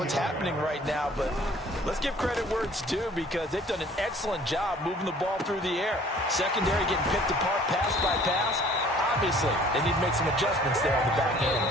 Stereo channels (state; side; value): normal; both; correlation 0.54